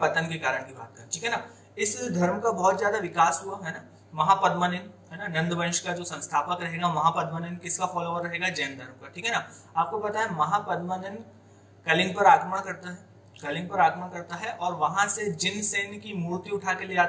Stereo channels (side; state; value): both; identical; correlation 1.00